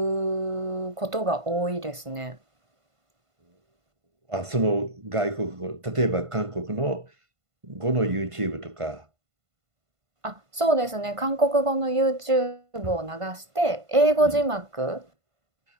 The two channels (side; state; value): left; late; 1.5 ms